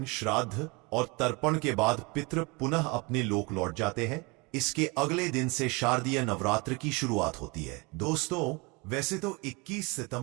श्राद्ध और तर्पण के बाद पितृ पुनः अपने लोक लौट जाते हैं। इसके अगले दिन से शारदीय नवरात्र की शुरुआत होती है। दोस्तों, वैसे तो 21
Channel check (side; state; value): left; quieter; 27.7 dB